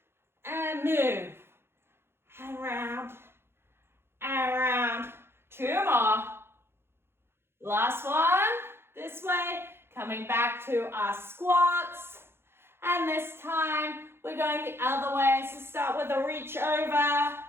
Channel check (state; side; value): late; left; 0.11 ms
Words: And move. And round. And round. Two more. Last one. This way. Coming back to our squats. And this time, we're going the other way. So start with a reach over.